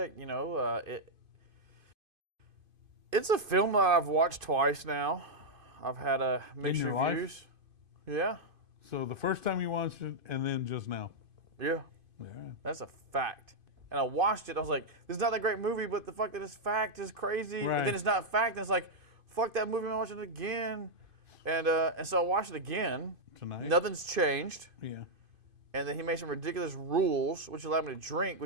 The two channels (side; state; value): left; late; 2.5 ms